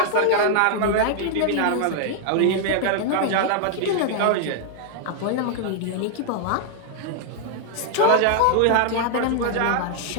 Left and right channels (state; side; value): different; both; correlation 0.00